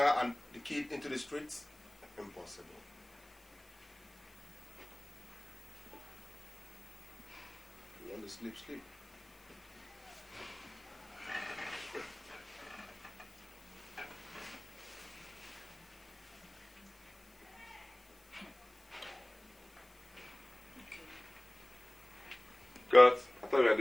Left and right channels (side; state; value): left; noise; hiss, 28 dB below the sound